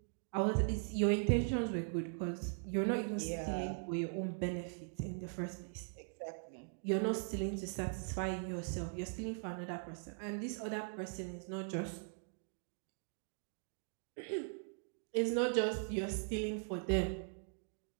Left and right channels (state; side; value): silent; left; digital silence